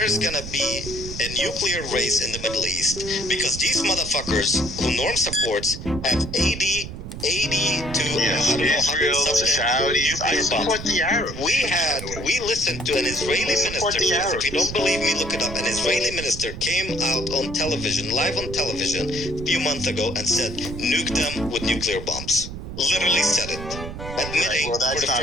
gonna be a nuclear race in the Middle East because these motherfuckers who Norm supports have 80 to Israel, the Saudis. I support the Arabs. We listened to an Israeli minister. If you don't believe me, look it up. An Israeli minister came out on television, live on television, a few months ago and said, nuke them with nuclear bombs. Literally said it. Admitting for the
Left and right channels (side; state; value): right; noise; rumble, 9 dB below the sound